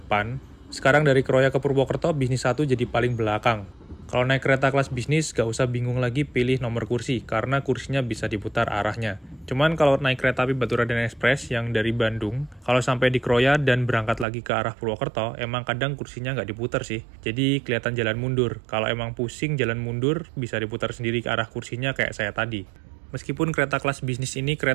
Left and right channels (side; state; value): left; drops out; at 14.2 s